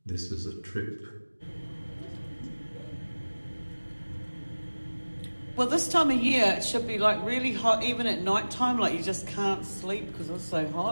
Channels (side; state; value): both; inverted; correlation -1.00